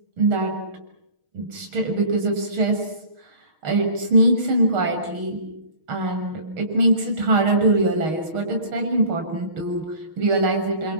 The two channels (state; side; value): late; left; 6.4 ms